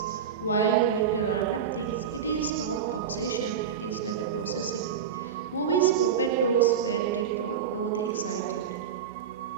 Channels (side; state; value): left; quieter; 7.7 dB